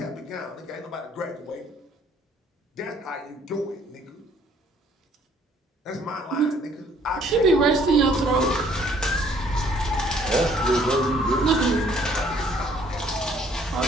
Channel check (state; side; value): normal; both; correlation 0.61